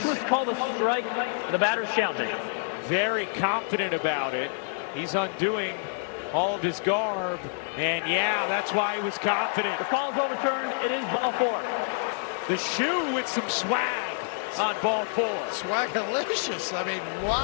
pitch was called a strike. The batter's challenging. very confident about it. He's undoing all of his garb. And yeah, that's why he was confident. The call is overturned. It is ball 4. The shoe with some swag on ball 4. Swagalicious. I mean,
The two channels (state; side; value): silent; right; 57 dB below the other